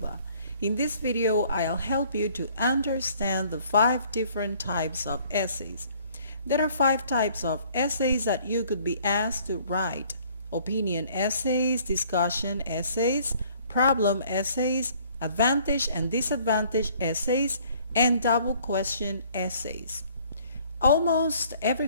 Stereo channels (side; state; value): both; inverted; correlation -0.58